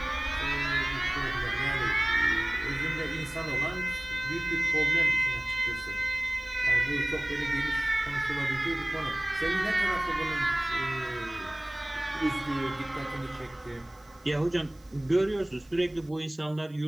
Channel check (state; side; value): noise; right; hiss, 30 dB below the sound